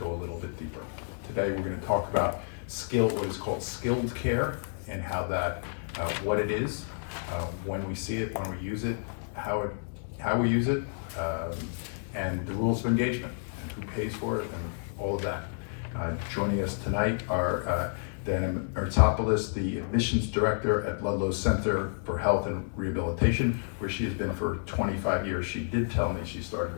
a little bit deeper. Today we're going to talk about what is called skilled care, and how that, what it is, when we see it, when we use it, how we use it, and the rules of engagement, and who pays for it, and all of that. Joining us tonight are Danielle Mirtsopoulos, the admissions director at Ludlowe Center for Health and Rehabilitation, where she has been for 25 years. She did tell me she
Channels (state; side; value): silent; right; digital silence